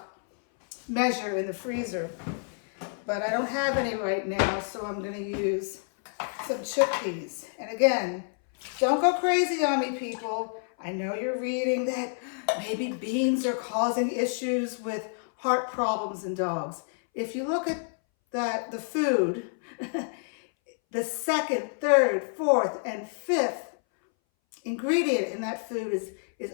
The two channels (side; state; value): right; silent; 59 dB below the other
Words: measure in the freezer. But I don't have any right now, so I'm gonna use some chickpeas. And again, don't go crazy on me, people. I know you're reading that maybe beans are causing issues with heart problems in dogs. If you look at the food, the second, third, fourth, and fifth ingredient in that food is